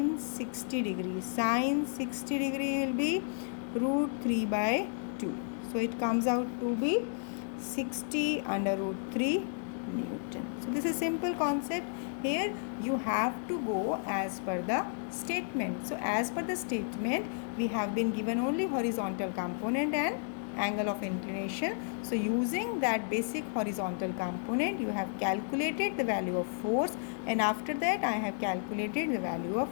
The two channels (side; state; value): right; silent; digital silence